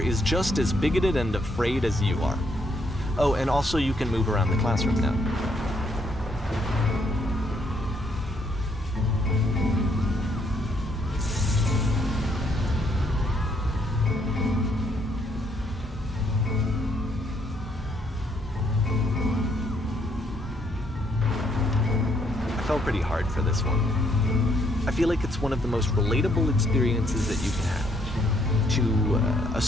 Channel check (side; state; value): both; normal; correlation 0.71